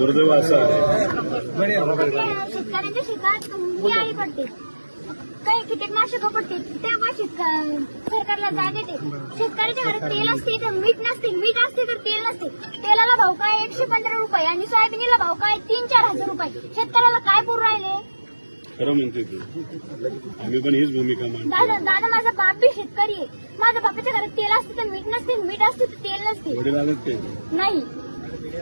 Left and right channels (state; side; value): inverted; both; correlation -1.00